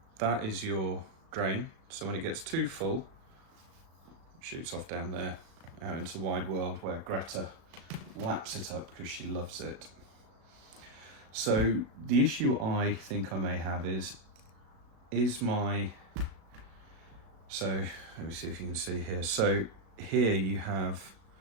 That is your drain. So when it gets too full, it shoots off down there, out into the wide world where Greta laps it up because she loves it. So the issue I think I may have is my, so let me see if you can see here. So here you have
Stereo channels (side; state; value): left; late; 36 ms